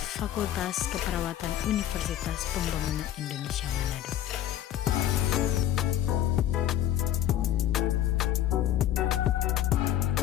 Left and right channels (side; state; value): right; quieter; 11.6 dB